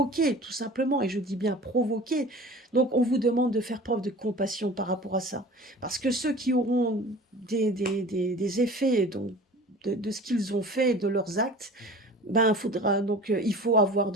tout simplement, et je dis bien provoqués. Donc on vous demande de faire preuve de compassion par rapport à ça. Parce que ceux qui auront des effets donc, de ce qu'ils ont fait, de leurs actes, ben, il faut avoir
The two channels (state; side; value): normal; both; correlation 0.40